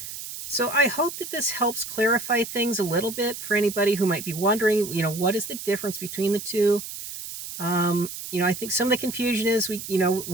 So I hope that this helps clarify things a little bit for anybody who might be wondering, what is the difference between the two? I think some of the confusion is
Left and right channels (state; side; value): noise; right; hiss, 9 dB below the sound